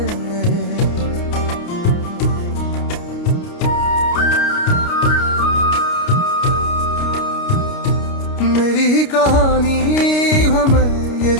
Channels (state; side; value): late; right; 29 ms